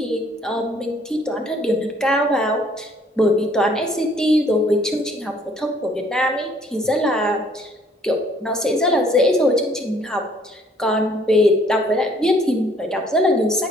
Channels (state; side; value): normal; both; correlation 0.61